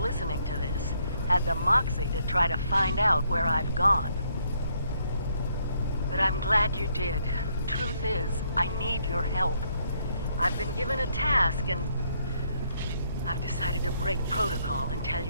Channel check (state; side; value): inverted; both; correlation -0.72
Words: to this had the moxie to try to find out where I've gone. But I'm glad you did. Truth is, I need your help. I've been given a task and I've decided to break protocol and tell